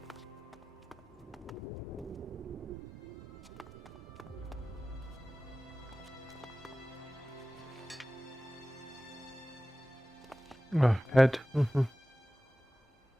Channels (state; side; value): normal; both; correlation 0.97